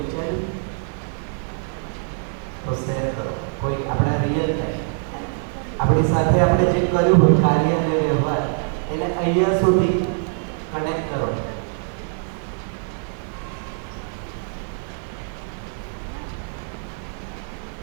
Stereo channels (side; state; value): left; silent; 57 dB below the other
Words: તો શેર કરો. કોઈ આપણા રિયલ ટાઈમ આપણી સાથે આપણે જે કર્યું હોય કાર્ય અને વ્યવહાર એને અહીંયા સુધી કનેક્ટ કરો.